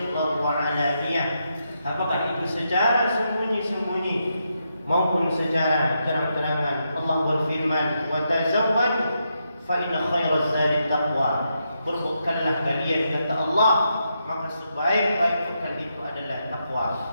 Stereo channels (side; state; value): both; inverted; correlation -0.83